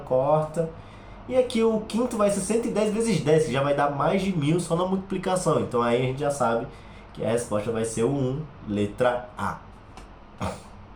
corta. E aqui o quinto vai ser 110 vezes 10, que já vai dar mais de 1.000 só na multiplicação. Então aí a gente já sabe que a resposta vai ser o 1, letra A.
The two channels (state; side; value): identical; both; correlation 1.00